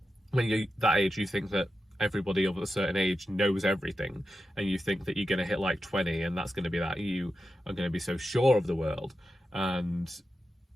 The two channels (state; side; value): normal; both; correlation 0.90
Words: when you're that age, you think that everybody of a certain age knows everything, and you think that you're going to hit like 20 and that's going to be that you are going to be so sure of the world. And